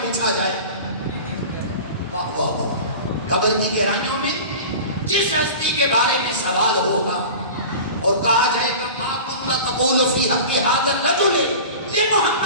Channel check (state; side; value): inverted; both; correlation -0.36